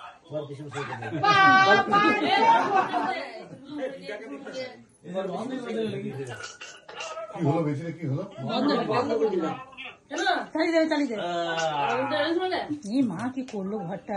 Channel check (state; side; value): identical; both; correlation 1.00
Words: কি হলো বেশি কি হলো চালিয়ে দে এই মা কি করলো